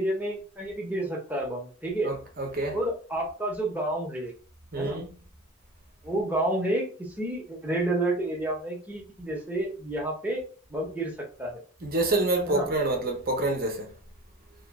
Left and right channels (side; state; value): both; normal; correlation 0.38